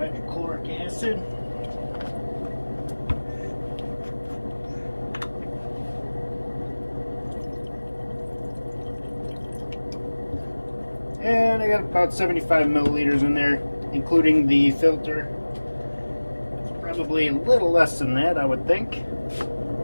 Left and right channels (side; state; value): both; inverted; correlation -1.00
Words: acid. And I got about 75 milliliters in there, including the filter. It's probably a little less than that, I would think.